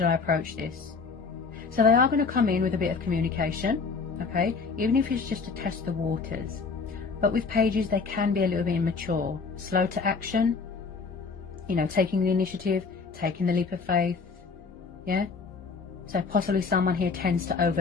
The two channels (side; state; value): right; quieter; 4.8 dB